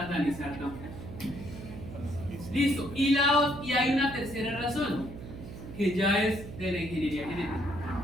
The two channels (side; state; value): right; noise; hum, 12 dB below the sound